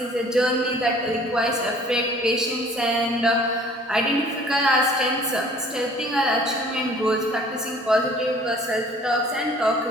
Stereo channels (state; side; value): normal; both; correlation 0.53